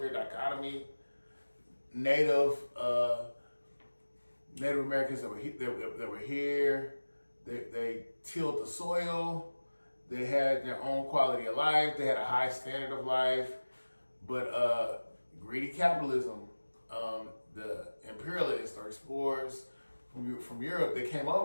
dichotomy. Native Americans that were here, they tilled the soil, they had their own quality of life, they had a high standard of life, but greedy capitalism, the imperialists or explorers from Europe, they came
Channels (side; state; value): both; inverted; correlation -1.00